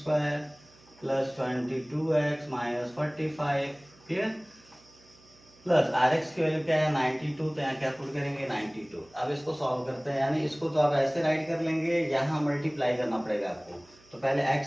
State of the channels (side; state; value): right; noise; hum, 27 dB below the sound